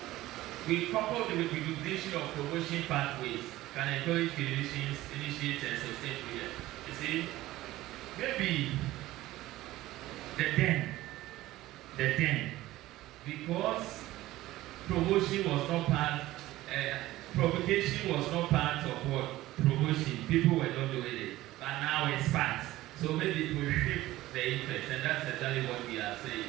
we couple the recognition of promotion pathways can encourage clinicians, initiate and sustain prayer. You see, maybe the then, because promotion was not part, provocation was not part of what? Promotion. People were not doing it, but now it's part. So maybe it will shift the interest, and that's exactly what we are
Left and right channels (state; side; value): quieter; left; 16.5 dB